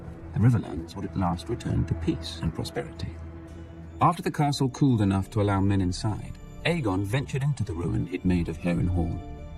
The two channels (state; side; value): identical; both; correlation 1.00